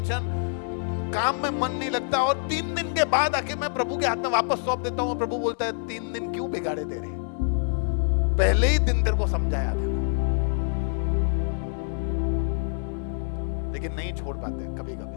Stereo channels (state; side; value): silent; right; digital silence